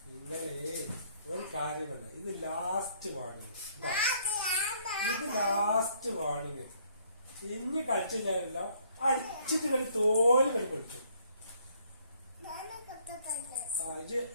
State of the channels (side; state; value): both; inverted; correlation -0.64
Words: ഇന്നലെ ഒരു കാര്യമല്ല. ഇത് ലാസ്റ്റ് വാണിങ്. ഇത് ലാസ്റ്റ് വാണിങ്. ഇനി കളിച്ചില്ലല്ലോ. അടിച്ചിട്ട് കളി തോല് കളി പൊളിച്ചു. ഇത്